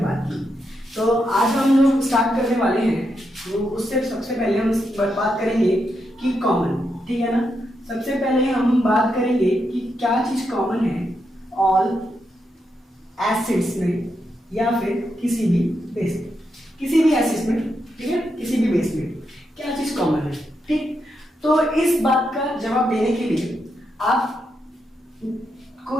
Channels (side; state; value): both; normal; correlation 0.83